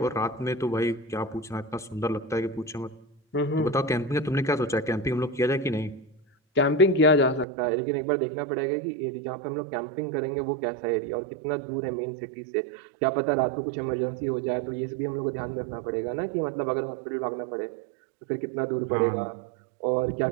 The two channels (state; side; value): drops out; left; at 7.5 s